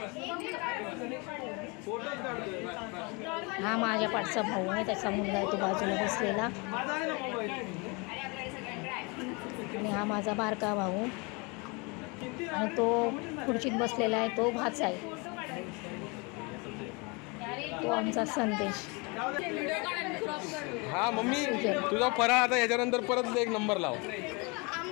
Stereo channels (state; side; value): quieter; right; 29.4 dB